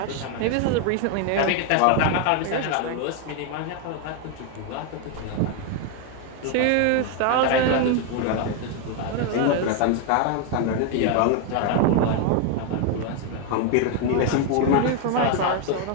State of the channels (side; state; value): both; different; correlation 0.01